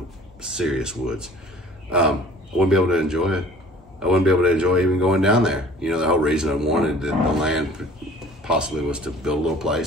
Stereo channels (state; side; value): normal; both; correlation 0.49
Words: serious woods. I wouldn't be able to enjoy it. I wouldn't be able to enjoy even going down there. You know, the whole reason I wanted the land possibly was to build a little